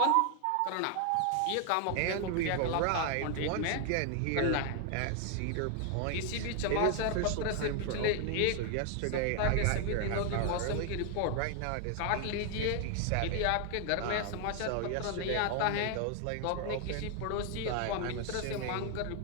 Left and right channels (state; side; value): different; both; correlation 0.00